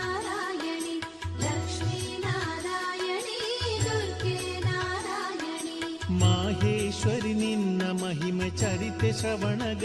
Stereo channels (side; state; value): both; identical; correlation 1.00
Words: ಲಕ್ಷ್ಮೀ ನಾರಾಯಣಿ ದುರ್ಗೆ ನಾರಾಯಣಿ. ಮಾಹೇಶ್ವರಿ ನಿನ್ನ ಮಹಿಮೆ ಚರಿತೆ